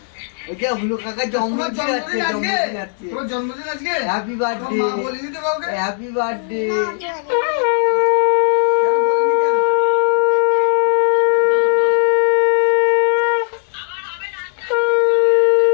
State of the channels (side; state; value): right; silent; digital silence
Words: আজকে হ্যাপি বার্থডে হ্যাপি বার্থডে